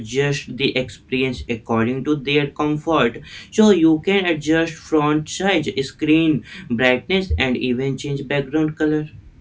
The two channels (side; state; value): both; identical; correlation 1.00